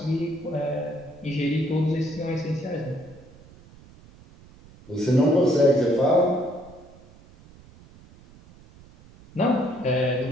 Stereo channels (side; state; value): right; noise; rumble, 23 dB below the sound